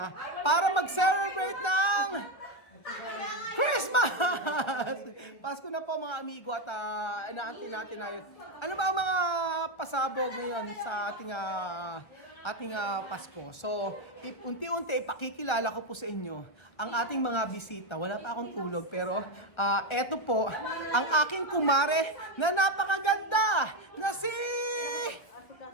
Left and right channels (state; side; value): late; right; 1.5 ms